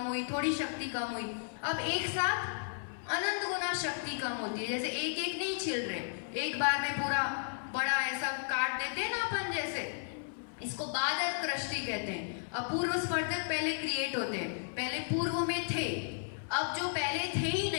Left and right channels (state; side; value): silent; right; 55 dB below the other